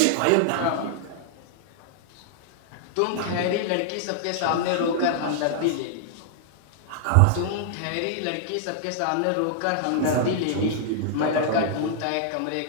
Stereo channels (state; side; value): different; both; correlation -0.01